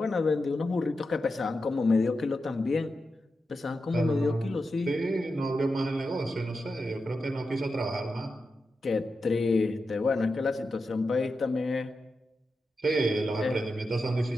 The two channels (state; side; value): normal; both; correlation 0.89